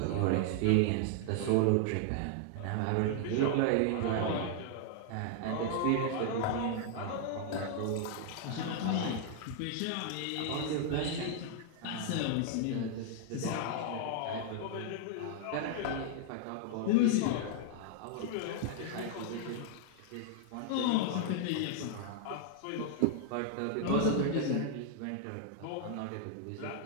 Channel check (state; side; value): different; both; correlation 0.00